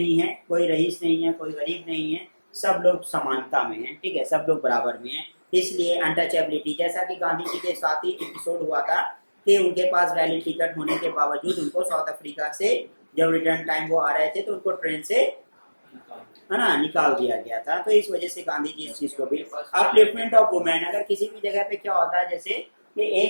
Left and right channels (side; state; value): both; inverted; correlation -1.00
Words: है, कोई रईस नहीं है, कोई गरीब नहीं है, सब लोग समानता में हैं, ठीक है, सब लोग बराबर में हैं। इसलिए अनटचेबिलिटी, जैसा कि गांधी जी के साथ ही एपिसोड हुआ था कि उनके पास वैलिड टिकट होने के बावजूद उनको साउथ अफ्रीका से जब रिटर्न टाइम वो आ रहे थे तो उनको ट्रेन से, है ना, निकाल दिया गया था। तो इस वजह से गांधी जी इस चीज को भी, अपलिफ्टमेंट ऑफ वुमेन, अगर किसी भी जगह पे क्या होता है, जैसे कि